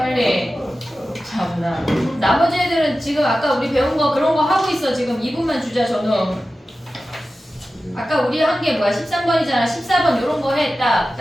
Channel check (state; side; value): normal; both; correlation 0.94